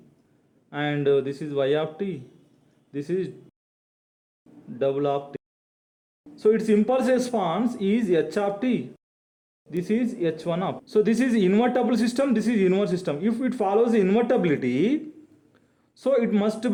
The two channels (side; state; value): both; identical; correlation 1.00